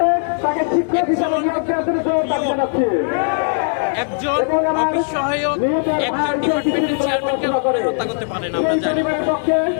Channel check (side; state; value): right; silent; 61 dB below the other